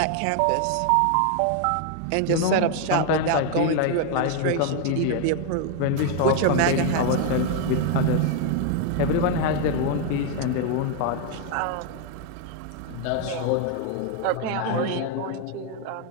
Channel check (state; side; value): different; both; correlation 0.01